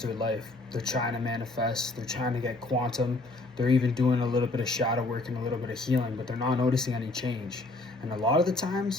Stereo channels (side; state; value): right; quieter; 3.0 dB